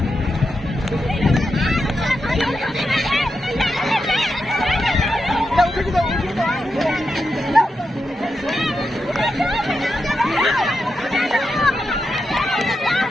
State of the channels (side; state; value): both; normal; correlation 0.87